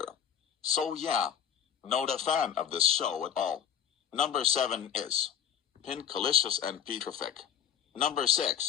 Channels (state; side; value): quieter; right; 8.8 dB